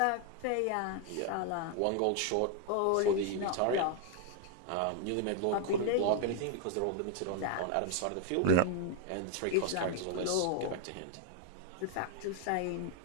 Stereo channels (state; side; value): different; both; correlation 0.00